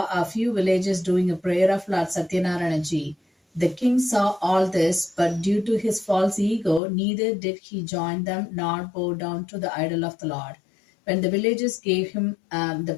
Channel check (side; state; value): right; drops out; at 6.8 s